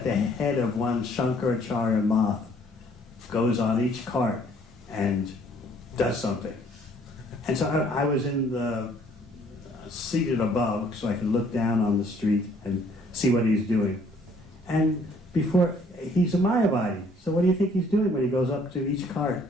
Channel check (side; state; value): both; normal; correlation 0.61